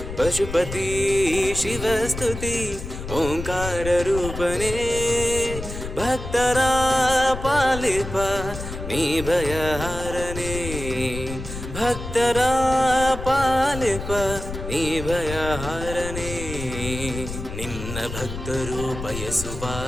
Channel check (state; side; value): noise; left; rumble, 8 dB below the sound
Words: ಪಶುಪತಿ ಶಿವಸ್ತುತಿ ಓಂಕಾರ ರೂಪನೆ, ಭಕ್ತರ ಪಾಲಿಪ ನೀ ಭಯಹಾರನೆ, ಭಕ್ತರ ಪಾಲಿಪ ನೀ ಭಯಹಾರನೆ, ನಿನ್ನ ಭಕ್ತರು ಬಯಸುವ